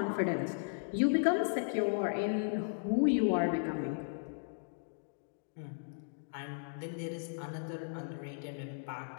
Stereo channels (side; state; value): right; silent; digital silence